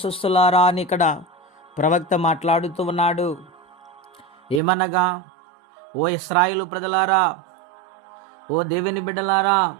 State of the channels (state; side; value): drops out; left; at 4.6 s